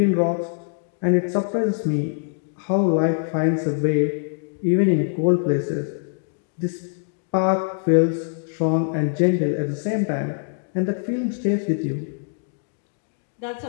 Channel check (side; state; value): right; silent; digital silence